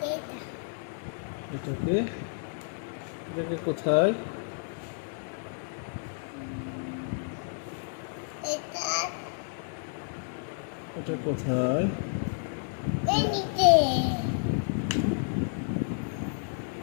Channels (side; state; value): right; silent; digital silence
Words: এটাকে এটাকে কোথায়, এটা কোথায়?